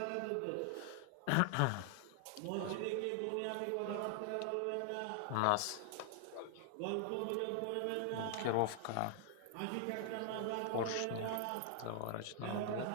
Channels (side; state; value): both; different; correlation 0.00